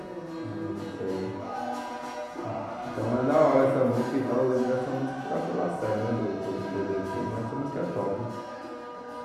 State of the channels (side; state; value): both; identical; correlation 1.00